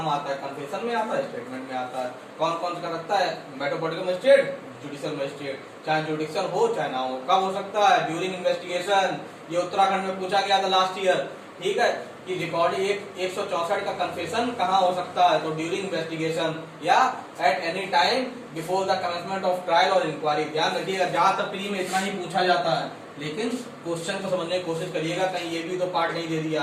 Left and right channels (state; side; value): identical; both; correlation 1.00